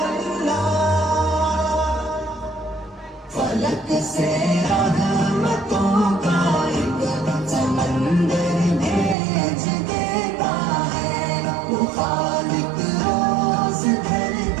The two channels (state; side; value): drops out; left; at 9.2 s